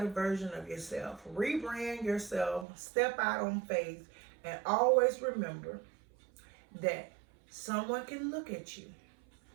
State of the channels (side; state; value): left; drops out; at 2.7 s